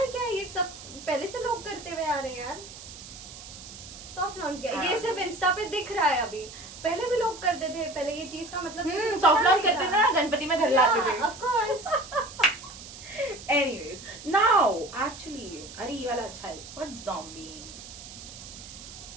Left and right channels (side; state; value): right; noise; hiss, 14 dB below the sound